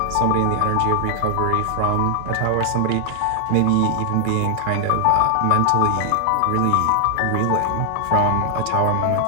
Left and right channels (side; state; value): both; different; correlation 0.00